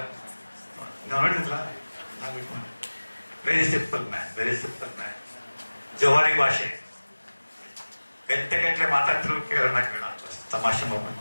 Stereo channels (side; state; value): both; inverted; correlation -1.00